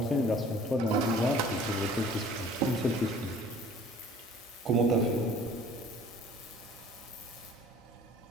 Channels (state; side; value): normal; both; correlation 0.50